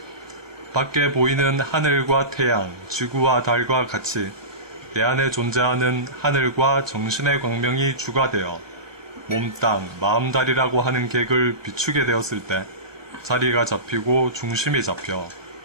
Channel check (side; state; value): left; late; 1.1 ms